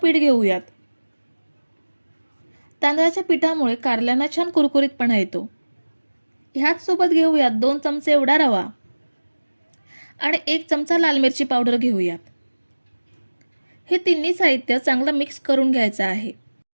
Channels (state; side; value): inverted; both; correlation -1.00